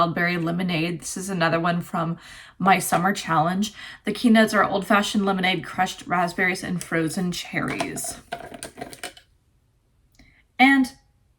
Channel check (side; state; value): both; identical; correlation 1.00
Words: Berry Lemonade. This is another one from my summer challenge. The keynotes are old fashioned lemonade, crushed raspberries, and frozen cherries. And